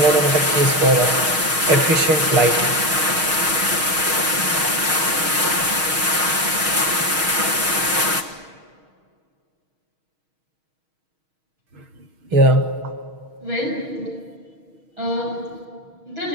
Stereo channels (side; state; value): left; late; 6.4 ms